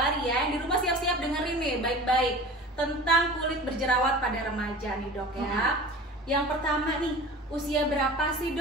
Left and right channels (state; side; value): normal; both; correlation 0.38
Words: ya, yang di rumah siap-siap dengerin nih baik-baik tentang kulit berjerawat pada remaja nih dok ya. Yang pertama nih, usia berapa sih